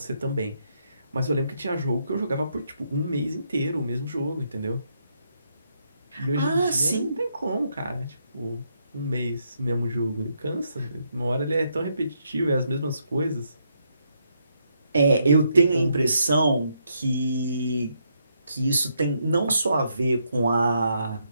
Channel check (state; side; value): inverted; both; correlation -0.77